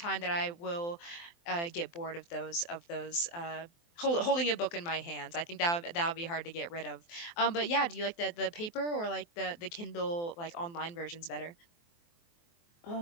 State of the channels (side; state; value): right; late; 23 ms